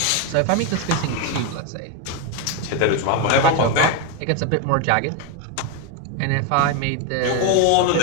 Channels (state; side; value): different; both; correlation 0.02